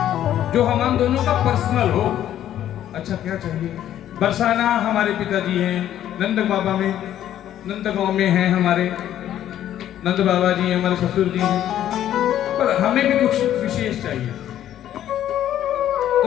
जो हम दोनों का पर्सनल हो। अच्छा क्या चाहिए? बरसाना हमारे पिताजी हैं, नंद बाबा में नंद गांव में हैं हमारे नंद बाबा जी, हमारे ससुर जी हैं, पर हमें भी कुछ विशेष चाहिए। तो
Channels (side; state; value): right; quieter; 11.5 dB